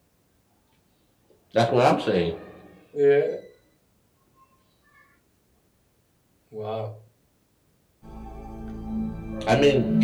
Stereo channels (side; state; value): both; identical; correlation 1.00